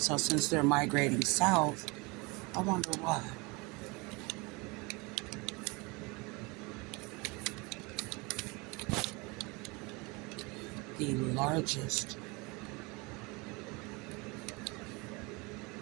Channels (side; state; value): left; quieter; 26.7 dB